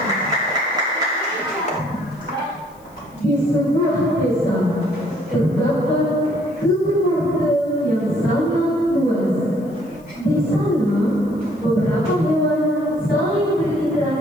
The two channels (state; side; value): noise; left; hiss, 30 dB below the sound